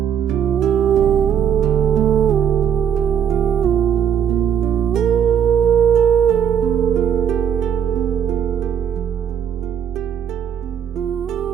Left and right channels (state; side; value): quieter; left; 8.6 dB